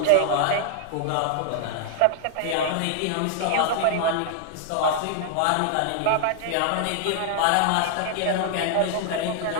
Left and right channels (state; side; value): different; both; correlation 0.00